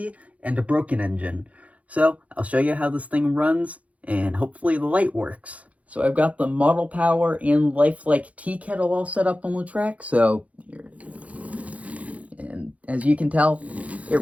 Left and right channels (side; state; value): left; late; 0.067 ms